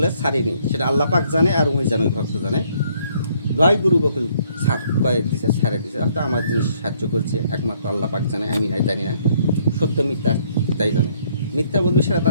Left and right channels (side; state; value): both; inverted; correlation -0.66